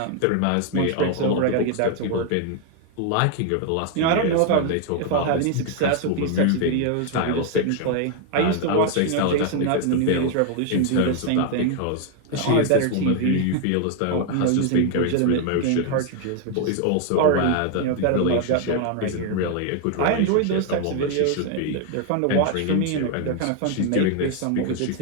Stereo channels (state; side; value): different; both; correlation 0.01